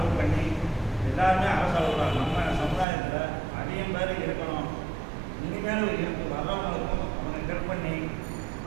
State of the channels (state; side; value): drops out; left; at 2.9 s